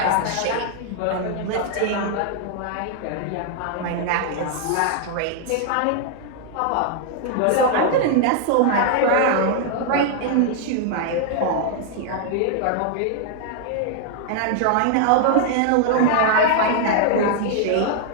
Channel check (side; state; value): both; different; correlation -0.01